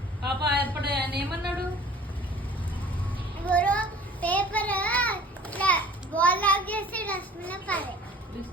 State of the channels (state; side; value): normal; both; correlation 0.48